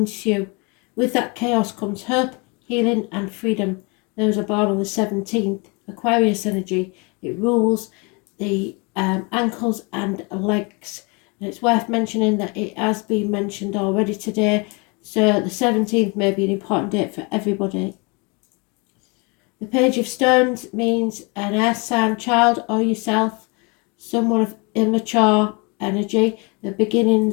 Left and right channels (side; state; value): right; quieter; 30.5 dB